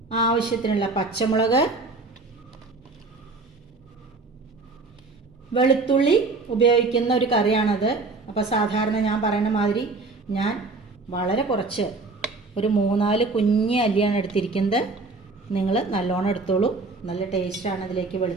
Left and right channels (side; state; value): left; quieter; 3.7 dB